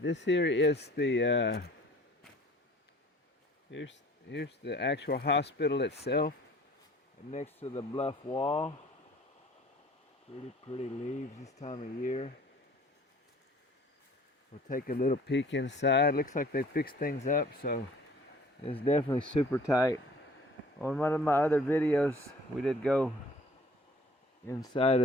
here is the here's the actual hospital itself, next to the bluff wall. Pretty leaves this time of year. We'll take a little peek inside. Looks like they fixed things up, so it's definitely super tight. On one of my other videos, we did go inside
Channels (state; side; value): normal; both; correlation 0.51